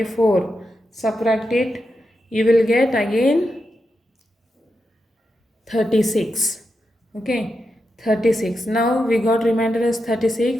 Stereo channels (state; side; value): normal; both; correlation 0.87